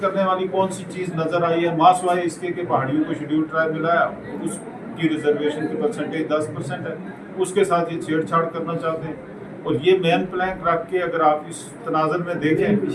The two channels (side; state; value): both; identical; correlation 1.00